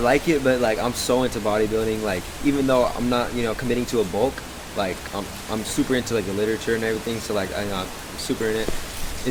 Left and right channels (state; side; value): identical; both; correlation 1.00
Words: it, but like I'm so into bodybuilding. Like even though I'm not, committing to a bulk, like I'm super into like the literature and everything. So like I'm super